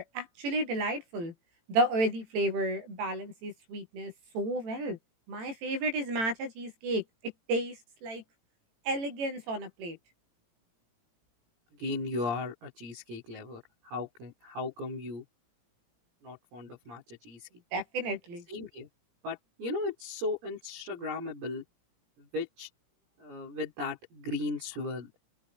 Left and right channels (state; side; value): late; left; 18 ms